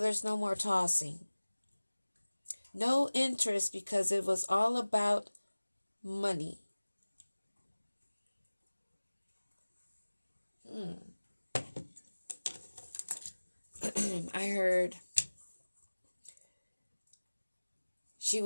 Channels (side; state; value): both; inverted; correlation -1.00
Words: no more tossing. No interest because it was all about money. I heard she